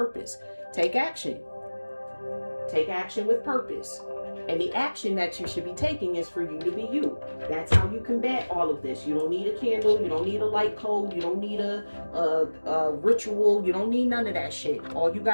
Take action. Take action with purpose. And the action that you should be taking is for you to be you. That's how you combat all of this. You don't need a candle. You don't need a light code. You don't need a ritual. You don't need none of that shit. All you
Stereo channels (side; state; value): both; inverted; correlation -1.00